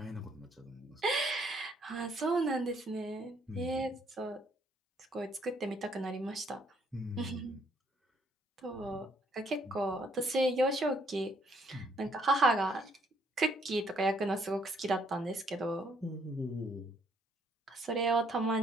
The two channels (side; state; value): both; normal; correlation 0.68